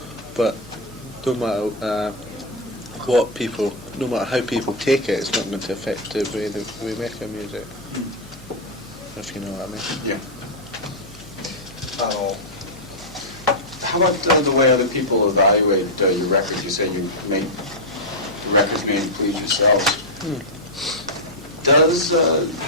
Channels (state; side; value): normal; both; correlation -0.03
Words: But no matter no matter how people take it, it's not going to affect the way that we make our music. If you know what I mean. Yeah. How about the way other people evaluate your records? You say you make the records made to please yourselves. Does